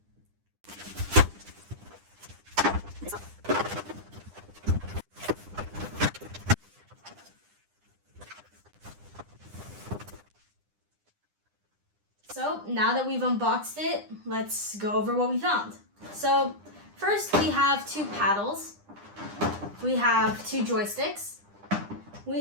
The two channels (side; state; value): left; late; 9.9 ms